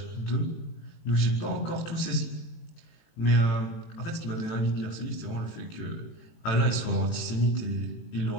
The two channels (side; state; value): right; late; 18 ms